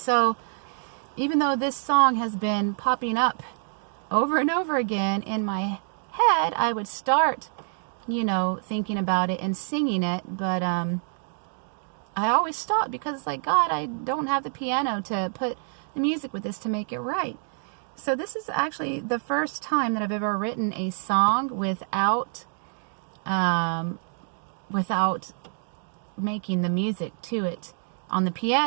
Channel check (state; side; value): silent; left; 60 dB below the other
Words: even though this song has been popping up over and over again in my head, I would start, thinking about it and singing it, but I always stop because it's like, God, I don't have the piano to put the music with this to make it right. So this is actually the first time that I've ever written a song without making the music to it on the